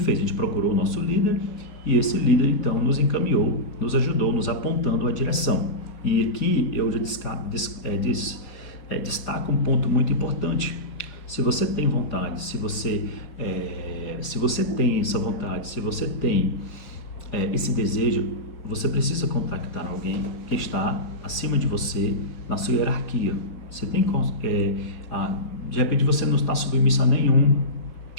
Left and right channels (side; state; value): right; late; 4.7 ms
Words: A gente procurou o nosso líder e esse líder então nos encaminhou, nos ajudou, nos apontando a direção. E aqui eu já destaco um ponto muito importante. Se você tem vontade, se você tem essa vontade, se você tem esse desejo, você precisa contactar alguém que está acima de você na sua hierarquia. Você tem de repente você não está submisso